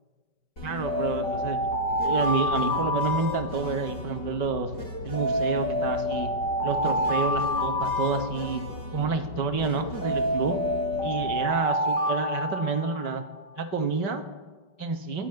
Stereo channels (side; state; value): right; late; 5.2 ms